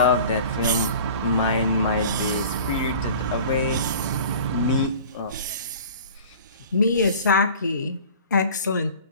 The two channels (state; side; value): inverted; both; correlation -0.43